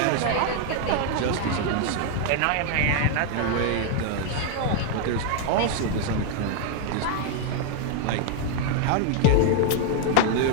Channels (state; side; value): different; both; correlation 0.00